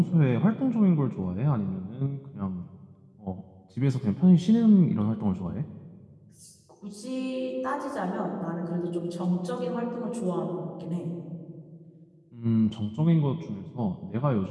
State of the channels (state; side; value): identical; both; correlation 1.00